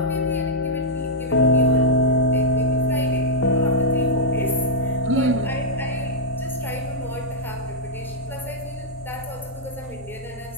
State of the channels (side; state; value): both; normal; correlation -0.06